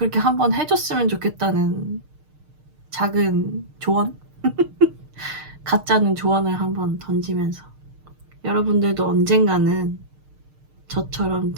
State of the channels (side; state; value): left; late; 6.5 ms